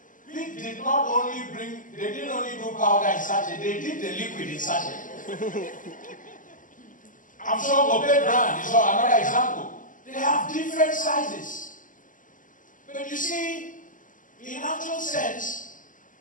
They didn't only do powder in sachet, they did the liquid in sachet. I'm sure Obey brand is another example. They have different sizes. But you see, in actual sense,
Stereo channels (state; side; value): late; right; 0.38 ms